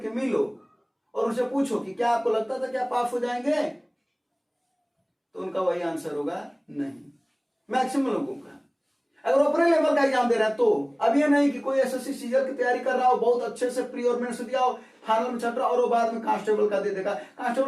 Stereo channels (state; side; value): identical; both; correlation 1.00